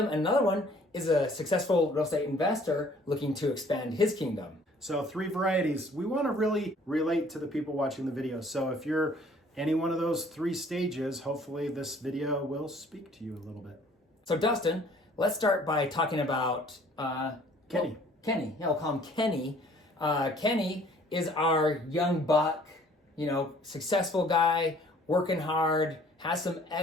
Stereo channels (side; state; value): both; normal; correlation 0.56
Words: And another one is a successful real estate investor looking to expand his kingdom. So 3 varieties. We want to really relate to the people watching the video. So if you're any one of those 3 stages, hopefully this video will speak to you a little bit. So Dustin, let's start by talking about Kenny. Kenny, yeah, we'll call him Kenny. Kenny is our young buck, successful guy, working hard, has some